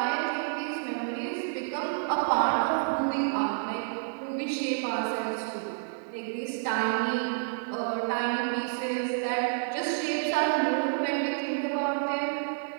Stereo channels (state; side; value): silent; left; 58 dB below the other